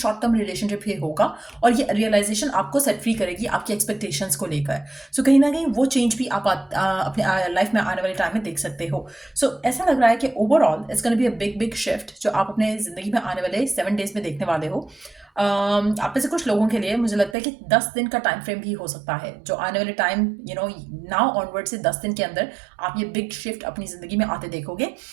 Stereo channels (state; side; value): drops out; left; at 17.4 s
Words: टर्म रिलेशनशिप ही होगा। और ये रियलाइजेशन आपको सेट फ्री करेगी आपकी एक्सपेक्टेशंस को लेकर। सो कहीं ना कहीं वो चेंज भी आप अपने लाइफ में आने वाले टाइम में देख सकते हो। सो ऐसा लग रहा है कि overall it's gonna be a big big shift जो आप अपने ज़िंदगी में आने वाले 7 डेज में देखने वाले हो। आप में से कुछ लोगों के लिए मुझे लगता है कि 10 दिन का टाइम फ्रेम भी हो सकता है, जो आने वाले टाइम नाउ ऑनवर्ड से 10 दिन के अंदर आप ये बिग शिफ्ट अपनी ज़िंदगी में आते देखोगे।